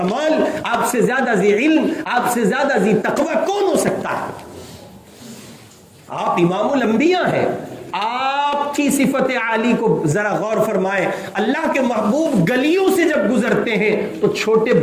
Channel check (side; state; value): both; identical; correlation 1.00